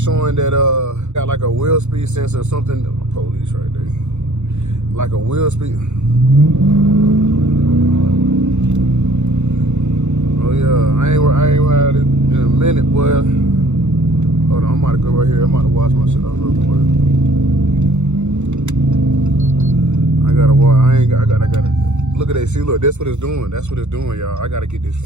that got like a wheel speed sensor or something. Police right there. Like a wheel speed. Oh yeah, I ain't had it in a minute, boy. Hold on, I'm about to go right here. I'm about to wash my shit off real quick. I gotta look at that. See, look, that's what it's doing. That's what it's doing, y'all. I gotta get this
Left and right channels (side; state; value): left; late; 0.83 ms